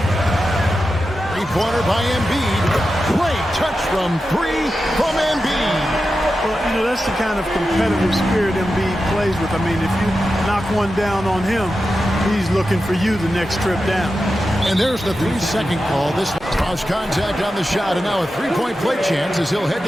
Three-pointer by Embiid. Great touch from 3 from Embiid. Well, you know, that's the kind of competitive spirit Embiid plays with. I mean, if you knock one down on him, he's looking for you the next trip down. And there's the 3-second call. This cross contact on the shot, and now a three-point play chance as he'll head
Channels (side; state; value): both; normal; correlation 0.91